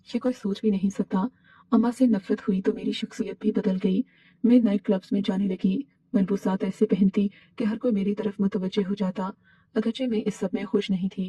कोई सोच भी नहीं सकता। अम्मा से नफरत हुई तो मेरी शख्सियत भी बदल गई। मैं नाइट क्लब्स में जाने लगी, मलबूसात ऐसे पहनती कि हर कोई मेरी तरफ मुतवज्जे हो जाता। अगरचे मैं इस सब में खुश नहीं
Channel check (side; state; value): both; identical; correlation 1.00